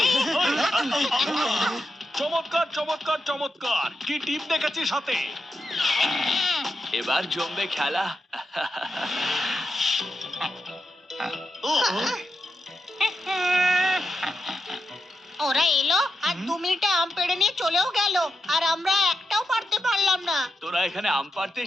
চমৎকার চমৎকার চমৎকার! কি টিপ দেখেছিস সাথে? এবার জমবে খেলা। ওরা এলো আর 2 মিনিটে আম পেড়ে নিয়ে চলেও গেল, আর আমরা একটাও পারতে পারলাম না। তোরা এখানে আম পাড়তে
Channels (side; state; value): both; normal; correlation 0.87